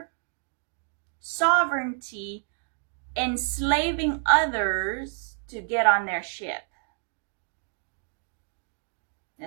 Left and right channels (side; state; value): left; silent; 59 dB below the other